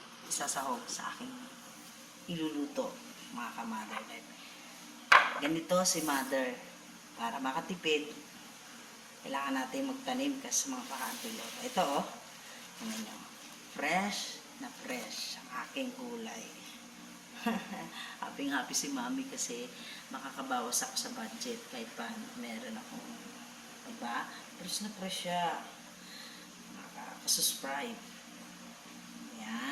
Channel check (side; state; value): both; identical; correlation 1.00